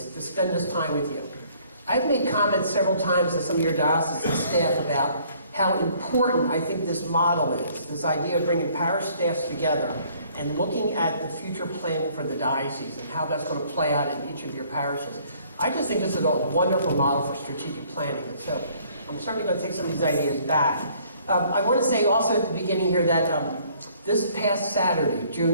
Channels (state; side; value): inverted; both; correlation -0.60